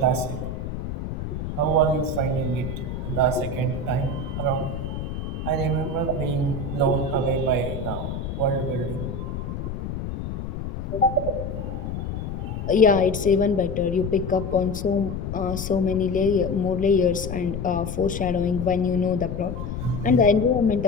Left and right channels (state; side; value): noise; left; rumble, 5 dB below the sound